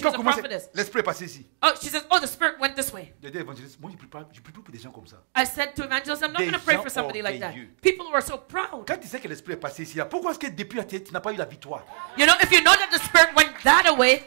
Quand was on a commence, prophetess. l'esprit est passé ici. Oh, she says, oh, the spirit went this way. J'ai dit, évangéliste, moi je ne prie pas pour des gens comme ça. I said to evangelist, I'm not Des going to pray gens for somebody like that. orgueilleux. People who are so proud. Quand tu sais que l'esprit est passé ici, là, pourquoi est-ce que depuis la tête, tu n'as pas eu la victoire? You know, if you know that the spirit went that away,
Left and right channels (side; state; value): left; silent; digital silence